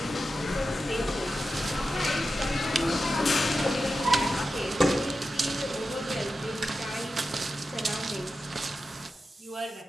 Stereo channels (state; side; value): normal; both; correlation 0.91